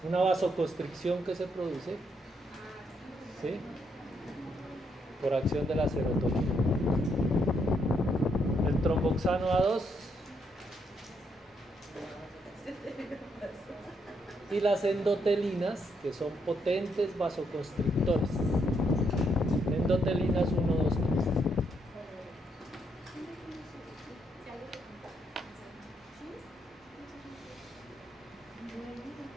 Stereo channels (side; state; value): both; normal; correlation 0.76